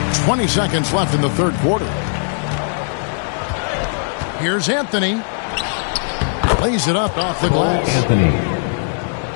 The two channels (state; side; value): silent; right; digital silence